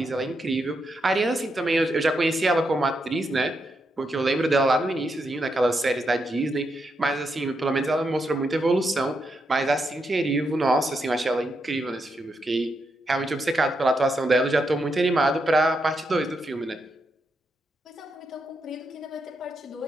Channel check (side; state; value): both; normal; correlation 0.82